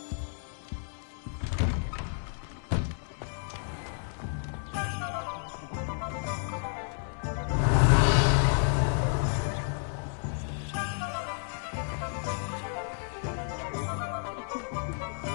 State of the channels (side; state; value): right; silent; 57 dB below the other